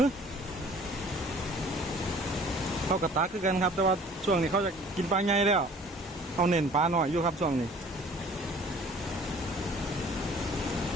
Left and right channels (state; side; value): normal; both; correlation 0.50